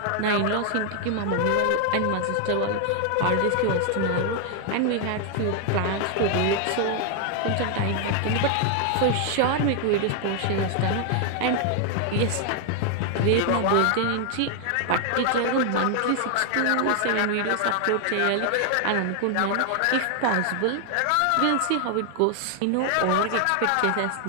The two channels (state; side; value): different; both; correlation 0.00